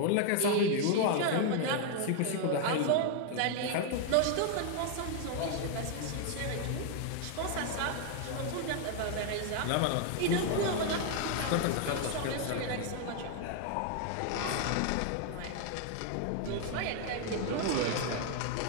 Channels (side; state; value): both; different; correlation 0.00